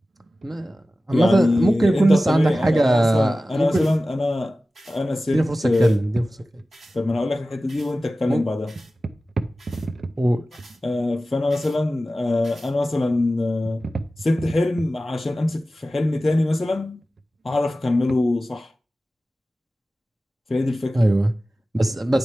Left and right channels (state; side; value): normal; both; correlation 0.95